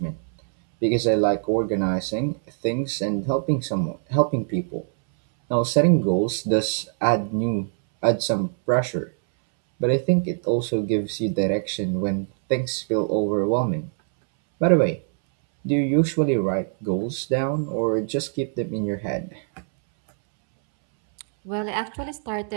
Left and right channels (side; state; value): left; silent; 63 dB below the other